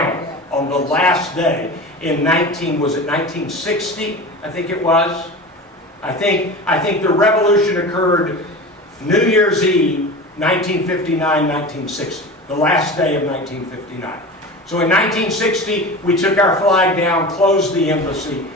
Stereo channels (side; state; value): both; normal; correlation 0.32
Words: on the last day in 1960, I think it was. I think the revolution occurred New Year's Eve, 1959, 1960, the last day of 1959. So in 1960, we took our flag down, closed the embassy,